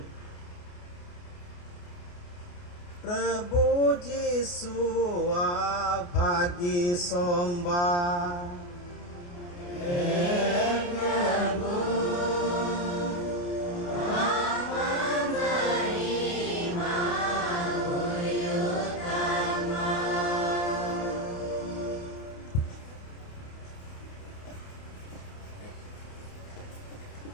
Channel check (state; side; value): late; right; 28 ms